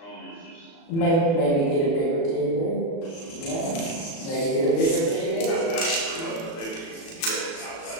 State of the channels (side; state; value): right; late; 36 ms